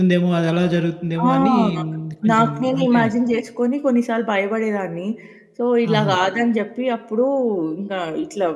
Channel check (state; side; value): identical; both; correlation 1.00